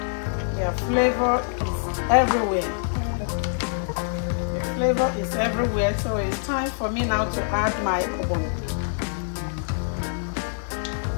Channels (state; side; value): silent; right; digital silence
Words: their flavor is everywhere. Flavor is everywhere, so it's time for me now to add my Ogbono.